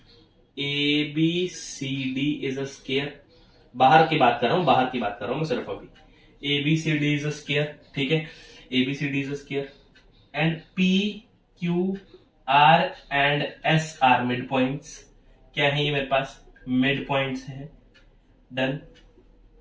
ABCD इज अ स्क्वायर, बाहर की बात कर रहा हूं, बाहर की बात कर रहा हूं मैं सिर्फ अभी। ABCD इज अ स्क्वायर, ठीक है, ABCD is a square, and PQR and S are mid points. क्या है ये मेरे पास? मिड पॉइंट्स है, डन।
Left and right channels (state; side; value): identical; both; correlation 1.00